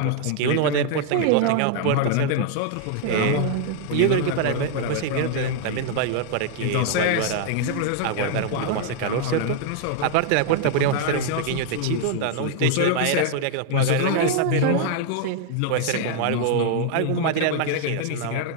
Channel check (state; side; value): different; both; correlation 0.00